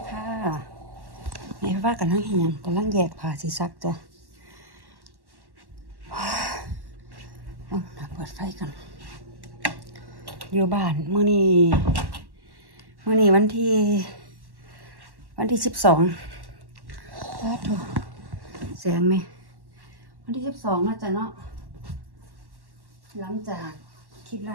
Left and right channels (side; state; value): left; late; 1.1 ms